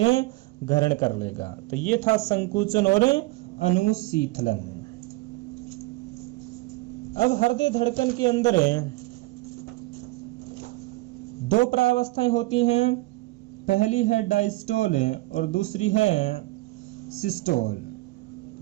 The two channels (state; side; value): quieter; left; 20.8 dB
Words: ग्रहण कर लेगा। तो ये था संकुचन और अनुशीतलन। अब हृदय धड़कन के अंदर दो प्रावस्थाएं होती हैं। पहली है डायस्टोल और दूसरी है सिस्टोल,